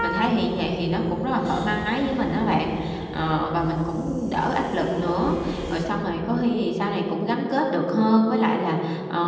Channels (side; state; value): both; identical; correlation 1.00